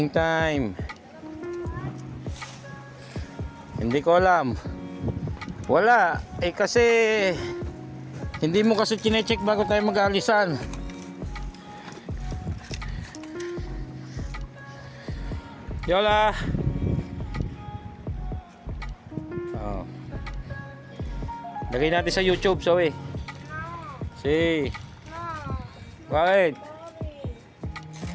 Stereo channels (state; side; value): identical; both; correlation 1.00